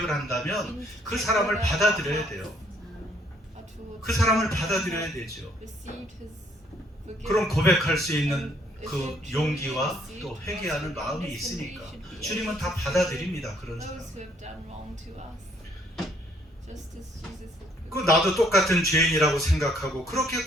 한다면 그 사람을 받아들여야 돼요. 그 사람을 받아들여야 되죠. 그럼 고백할 수 있는 그 용기와 또 회개하는 마음이 있으니까 주님은 다 받아들입니다. 그런 사람. 그 나도 똑같은 죄인이라고 생각하고 그렇게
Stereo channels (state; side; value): normal; both; correlation 0.66